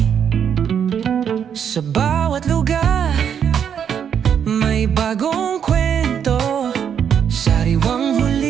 Sa bawat lugar may bagong kwento. Sariwang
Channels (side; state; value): left; quieter; 8.1 dB